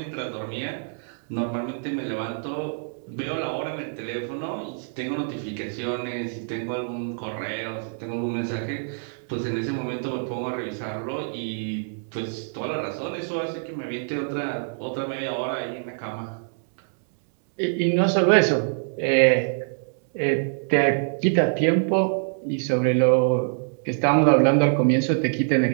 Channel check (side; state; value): left; silent; 62 dB below the other